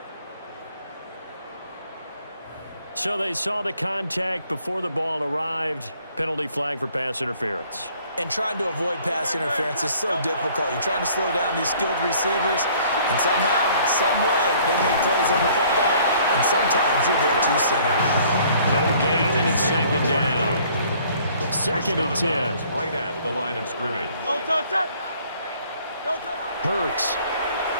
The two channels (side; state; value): both; inverted; correlation -0.58